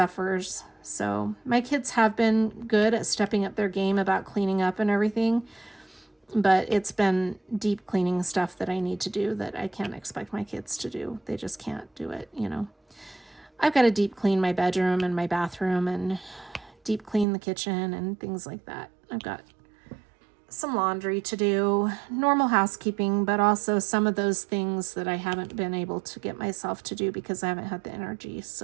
So my kids have been good at stepping up their game about cleaning up and everything, but it's been deep cleaning stuff that I need to do that I can't expect my kids to do. They just can't do it, you know. I've got to deep clean my bedroom and my bathroom and deep clean the kitchen and things like that. I've got some laundry to do, normal housekeeping, but also some of those things that I haven't been able to get myself to do because I haven't had the energy.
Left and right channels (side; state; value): left; drops out; at 17.2 s